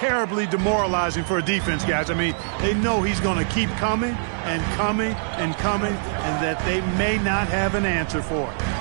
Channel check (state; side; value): silent; left; digital silence